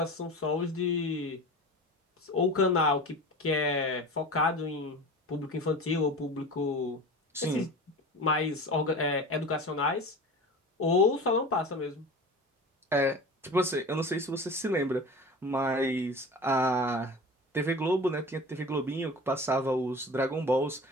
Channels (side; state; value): both; normal; correlation 0.34